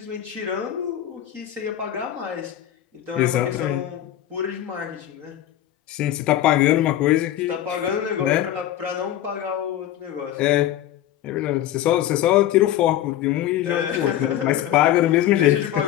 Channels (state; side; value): quieter; right; 12.3 dB